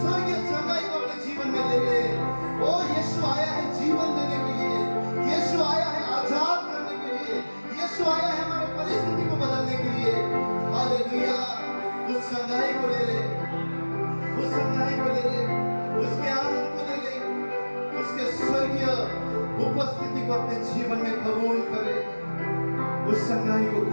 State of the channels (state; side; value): inverted; both; correlation -1.00